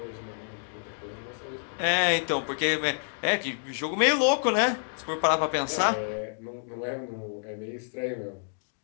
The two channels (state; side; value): silent; right; digital silence